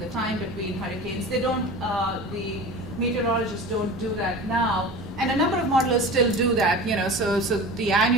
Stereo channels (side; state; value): both; normal; correlation 0.35